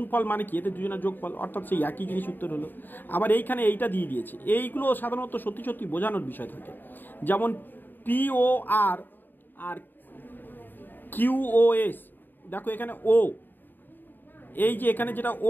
মানে কি, এতে দুজনের যোগফল, অর্থাৎ সেই একই জিনিস উত্তর হলো। আবার এইখানে এইটা দিয়ে দিয়েছে, এইগুলো সাধারণত সত্যি সত্যি বোঝানোর বিষয় থাকে, যেমন POR আর QOS, দেখো এখানে ও, এই যে এখানে যেটা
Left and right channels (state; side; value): late; right; 0.091 ms